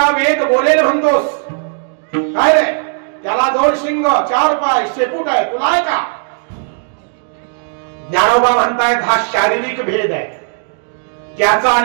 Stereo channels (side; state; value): left; silent; digital silence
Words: वेद बोलेल म्हणतोस, काय रे, त्याला 2 शिंग 4 पाय शेपूट आहे, तुला आहे का? ज्ञानोबा म्हणतायत हा शारीरिक भेद आहे, त्याचा